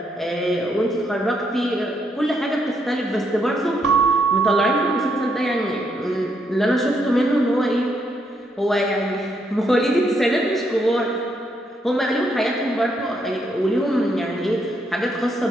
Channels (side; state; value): both; normal; correlation 0.76